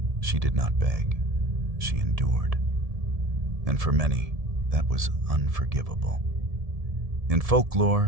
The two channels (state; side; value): late; left; 1.7 ms